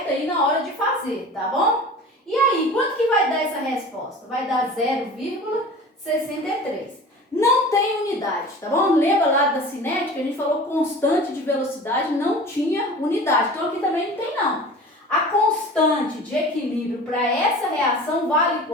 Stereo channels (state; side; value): normal; both; correlation 0.39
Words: aí na hora de fazer, tá bom? E aí, quanto que vai dar essa resposta? Vai dar 0,63. Não tem unidade, tá bom? Lembra lá da cinética? A gente falou constante de velocidade, não tinha unidade. Então, aqui também não tem, não. A constante de equilíbrio para essa reação vale